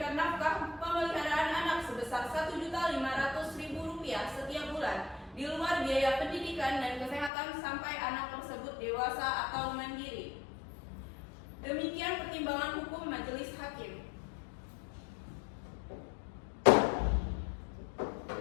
nafkah pemeliharaan anak sebesar Rp1.500.000 setiap bulan di luar biaya pendidikan dan kesehatan sampai anak tersebut dewasa atau mandiri. Demikian pertimbangan hukum Majelis Hakim.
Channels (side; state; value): right; drops out; at 7.3 s